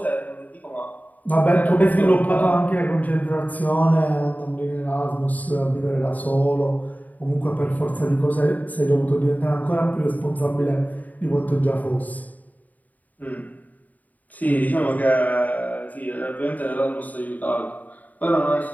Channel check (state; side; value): late; right; 0.077 ms